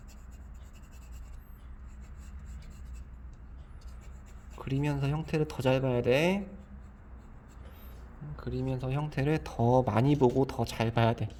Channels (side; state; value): both; identical; correlation 1.00